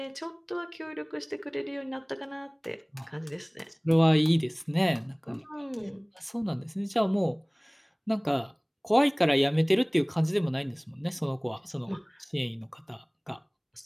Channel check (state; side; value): identical; both; correlation 1.00